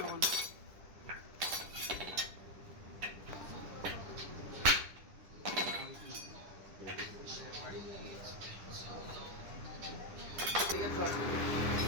এখন ঠিক আছে।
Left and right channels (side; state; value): left; late; 10 ms